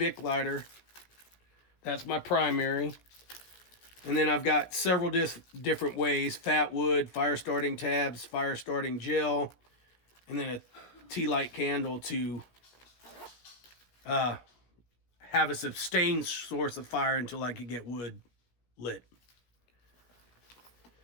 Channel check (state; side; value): late; right; 17 ms